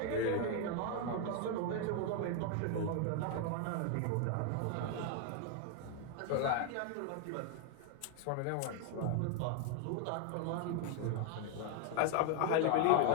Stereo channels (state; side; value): different; both; correlation 0.00